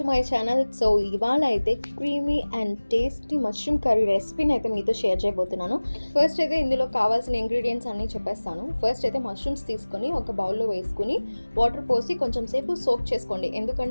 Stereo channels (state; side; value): inverted; both; correlation -1.00